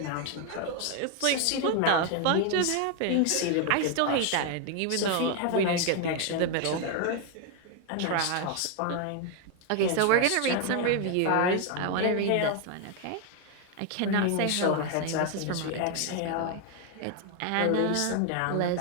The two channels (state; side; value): different; both; correlation 0.01